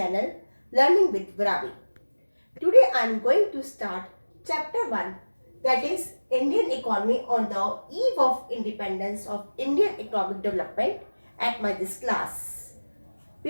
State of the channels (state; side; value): inverted; both; correlation -1.00